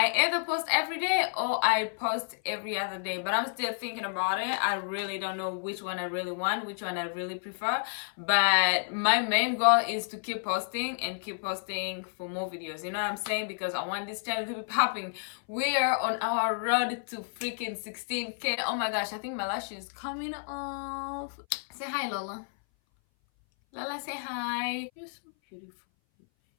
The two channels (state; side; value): silent; right; 58 dB below the other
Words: either post every day or I post every other day, but I'm still thinking about it. I really don't know which one I really want, which one I really prefer, but my main goal is to keep posting and keep posting for more videos, you know what I'm saying? Because I want this channel to be popping. We are on our road to freaking 16k. Oh my gosh, I think my lash is coming off. Say hi, Lola. Lola, say hi. You're so beautiful.